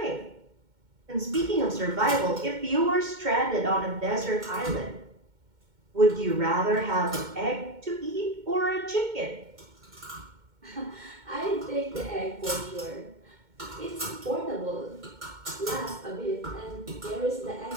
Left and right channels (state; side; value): late; left; 2.2 ms